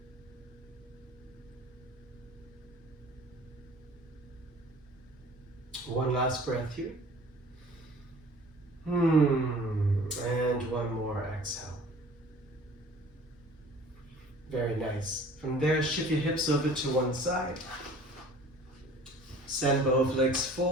One last breath here. And one more exhale. Very nice. From there, shift your hips over to one side. Send both legs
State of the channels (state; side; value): normal; both; correlation 0.48